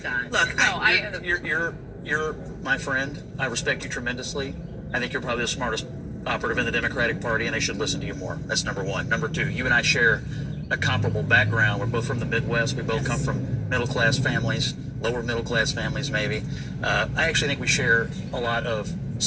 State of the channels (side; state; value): both; identical; correlation 1.00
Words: Look, You're my friend. I respect you tremendously. I think you're probably the smartest operative in the Democratic Party, and they should listen to you more. That's number one. Number two, you and I share a comparable background. We're both from the Midwest. We both come from middle-class families, lower middle-class families maybe. I actually think we share a lot of